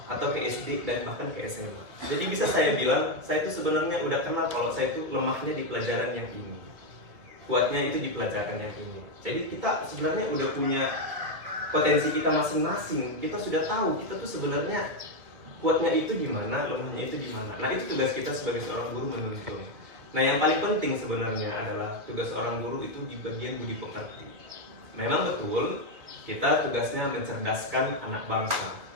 atau ke SD dan bahkan ke SMA. Jadi bisa saya bilang, saya itu sebenarnya udah kenal kalau saya itu lemahnya di pelajaran yang ini, kuatnya itu di pelajaran yang ini. Jadi kita sebenarnya udah punya potensi kita masing-masing. Kita sudah tahu kita tuh sebenarnya kuatnya itu di mana, lemahnya itu di mana. Nah itu tugas kita sebagai seorang guru menuntun. Nah yang paling penting sebenarnya adalah tugas seorang guru itu di bagian budi pekerti. Memang betul kita tugasnya mencerdaskan anak bangsa,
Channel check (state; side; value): late; left; 2.3 ms